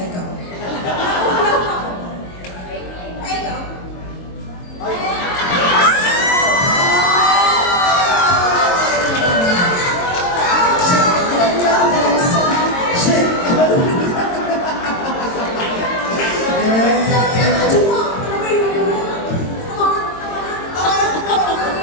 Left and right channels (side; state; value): right; late; 22 ms